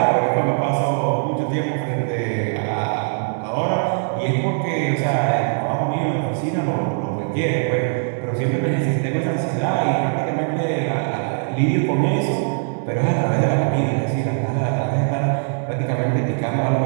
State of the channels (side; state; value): left; silent; 65 dB below the other